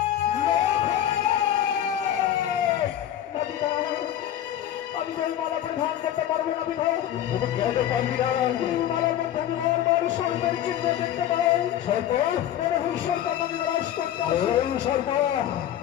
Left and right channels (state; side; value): quieter; right; 11.4 dB